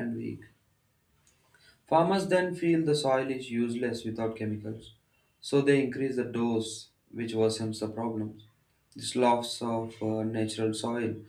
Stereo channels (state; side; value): identical; both; correlation 1.00